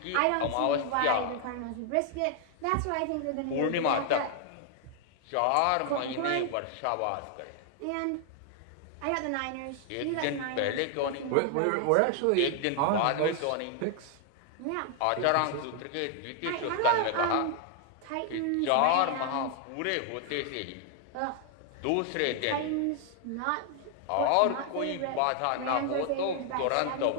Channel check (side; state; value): both; different; correlation 0.00